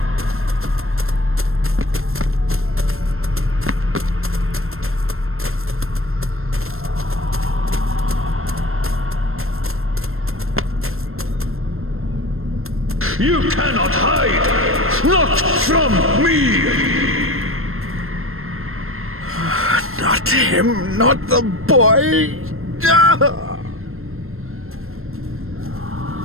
You cannot hide! Not from me! Not him, not the boy!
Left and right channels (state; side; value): late; left; 0.62 ms